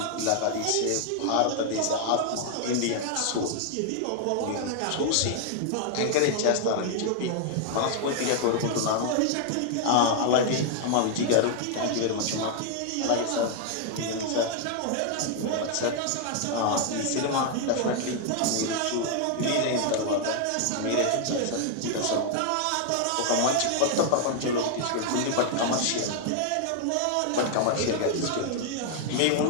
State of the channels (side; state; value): both; different; correlation 0.00